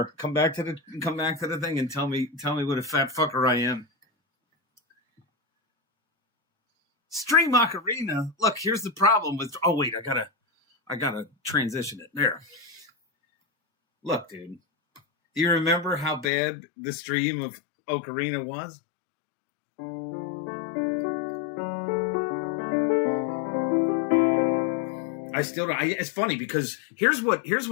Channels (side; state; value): right; drops out; at 16.2 s